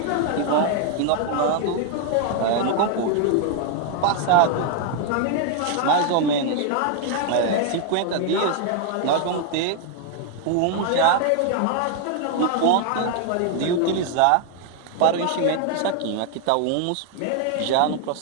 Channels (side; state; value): both; different; correlation 0.00